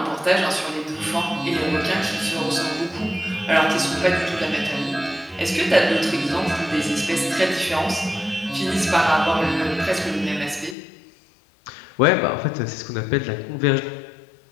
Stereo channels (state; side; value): drops out; right; at 10.8 s